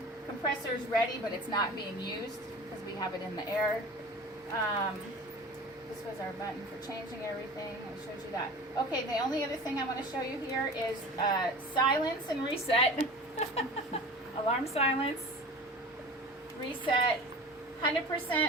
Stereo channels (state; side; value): normal; both; correlation 0.38